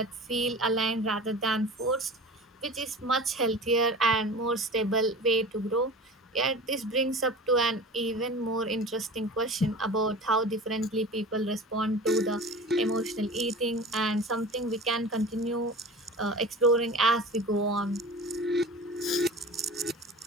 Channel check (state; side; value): normal; both; correlation 0.36